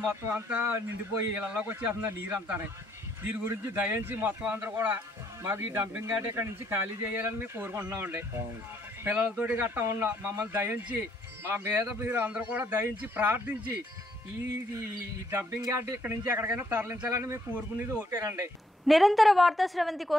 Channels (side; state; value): both; normal; correlation 0.70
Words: మొత్తం అంతా నిండిపోయి ఇళ్ళలోకి వచ్చేస్తుంది నీరు అంతానే. దీని గురించి దయించి మొత్తం అందరూ కూడా మాకు ఈ డంపింగ్ యార్డ్ ఇక్కడ నుంచి ఖాళీ చేయాలని మేము కోరుకుంటున్నామండి. పిల్లలతోటి గట్టా ఉన్నాం, మమ్మల్ని దయించి మా మీద మీరు అందరూ కూడా దయించి ప్రార్థించి ఈ డంపింగ్ యార్డ్ ఇక్కడ నుంచి ఎక్కడికైనా తరలించాలని మేము కోరుకునేది ఒకటేనండి. నిరంతర వార్తా స్రవంతి